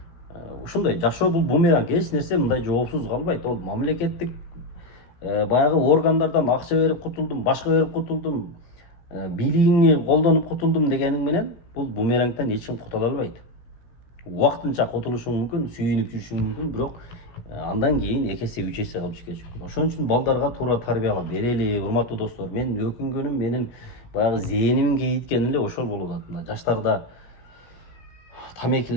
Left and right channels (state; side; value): late; right; 16 ms